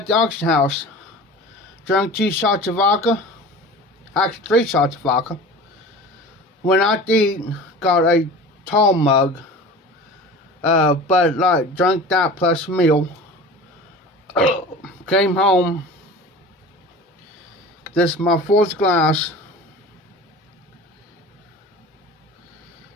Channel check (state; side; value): normal; both; correlation 0.37